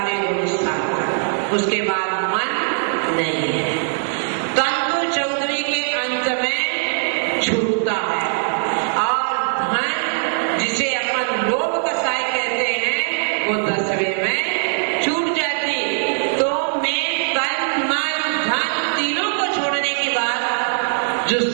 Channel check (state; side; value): silent; left; digital silence